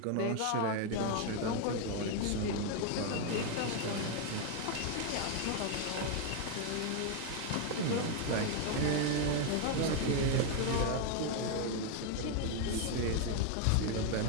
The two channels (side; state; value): both; different; correlation 0.01